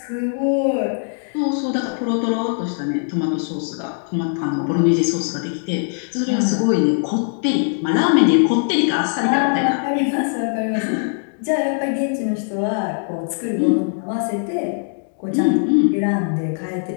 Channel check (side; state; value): right; silent; 60 dB below the other